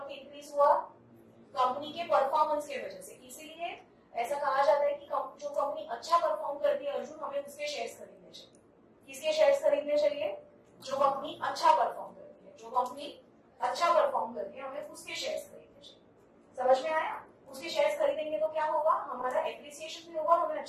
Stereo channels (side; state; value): both; identical; correlation 1.00